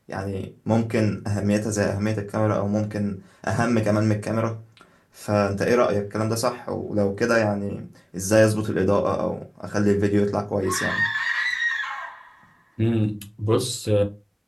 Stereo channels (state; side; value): identical; both; correlation 1.00